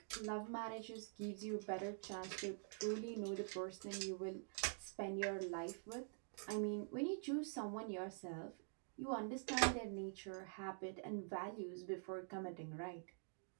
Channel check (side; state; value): left; silent; digital silence